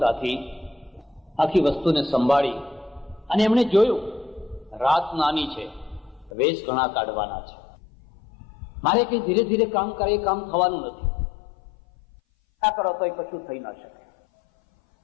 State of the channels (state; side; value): drops out; right; at 6.3 s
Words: આખી વસ્તુને સંભાળી અને એમણે જોયું રાત નાની છે, વેશ ઘણા કાઢવાના છે, મારે કઈ ધીરે ધીરે કામ કરે એ કામ થવાનું નથી, આ કરો તો એ કશું થઈ ના શકે.